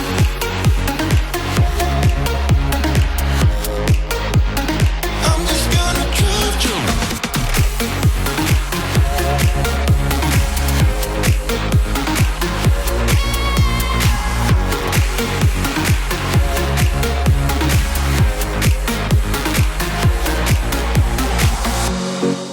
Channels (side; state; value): both; identical; correlation 1.00